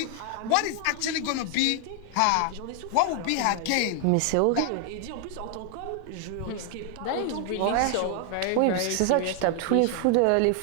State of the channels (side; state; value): both; different; correlation 0.00